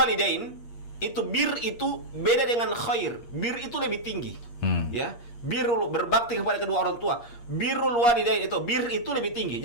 itu beda dengan khair. Bir itu lebih tinggi. Ya, birrul berbakti kepada kedua orang tua. Birrul walidain itu lebih tinggi.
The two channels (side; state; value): right; late; 8.5 ms